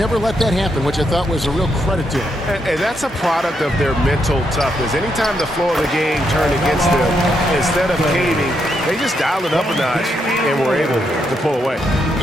let that happen, which I thought was a real credit to them. And that's a product of their mental toughness. Anytime the flow of the game turned against them, instead of caving, they just dialed it up a notch and were able to pull away.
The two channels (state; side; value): normal; both; correlation 0.79